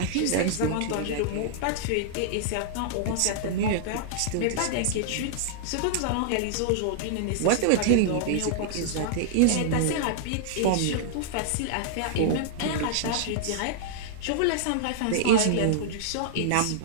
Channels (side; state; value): both; different; correlation -0.01